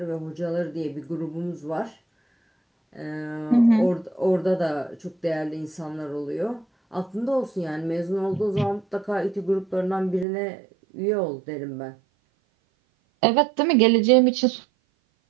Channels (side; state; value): left; drops out; at 10.2 s